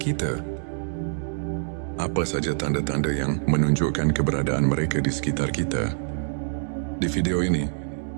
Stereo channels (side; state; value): left; silent; digital silence